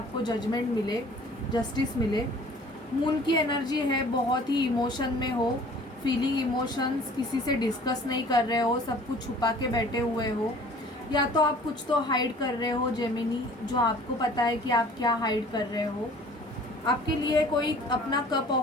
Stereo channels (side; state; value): both; normal; correlation 0.50